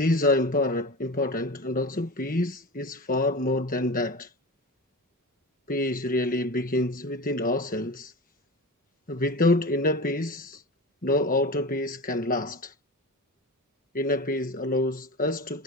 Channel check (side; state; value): both; normal; correlation 0.29